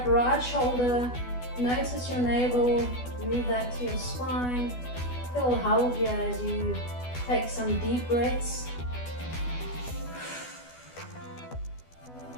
right shoulder, notice your navel, move that to your spine. Feel held here as you take some deep breaths.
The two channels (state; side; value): late; right; 12 ms